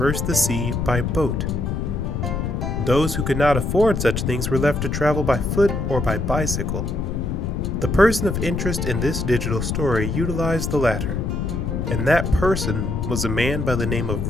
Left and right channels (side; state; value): left; noise; rumble, 2 dB below the sound